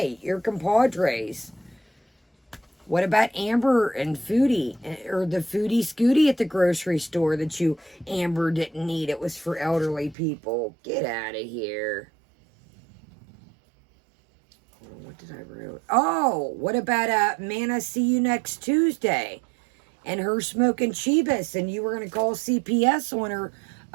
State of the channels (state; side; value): drops out; left; at 10.2 s